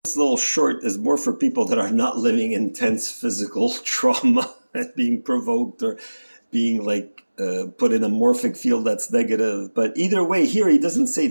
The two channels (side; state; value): both; inverted; correlation -1.00